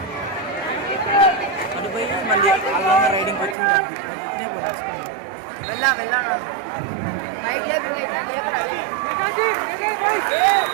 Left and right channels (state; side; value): drops out; left; at 3.6 s